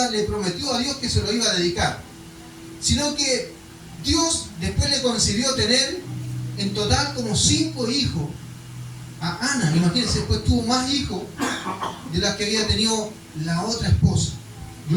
le prometió a Dios que se lo iba a dedicar. Sino que Dios después le concedió tener en total como 5 hijos a Ana. Imagínense, después tuvo más hijos de las que había tenido la otra esposa.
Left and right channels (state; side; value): identical; both; correlation 1.00